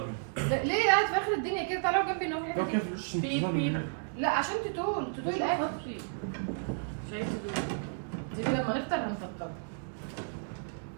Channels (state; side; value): silent; left; digital silence